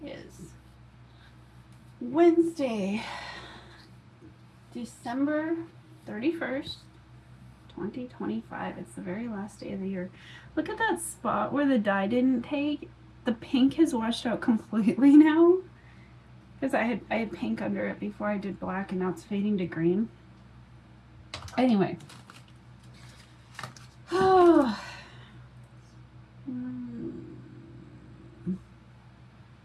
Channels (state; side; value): identical; both; correlation 1.00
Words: is Wednesday, December 31st, 2025. It's the very last day of the year. Look at that spot where the dye didn't take. The pink has washed out completely now. Because I had pink under it before I did black, and now it's fading to green. Anyway. Oh.